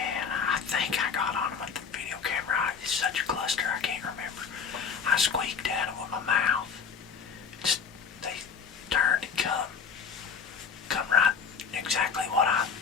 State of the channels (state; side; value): quieter; right; 6.3 dB